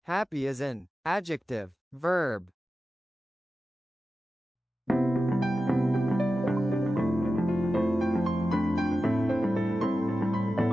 Happy is an adjective, verb.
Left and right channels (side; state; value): both; normal; correlation 0.93